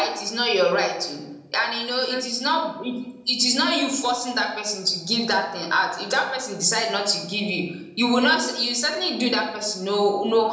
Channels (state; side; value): identical; both; correlation 1.00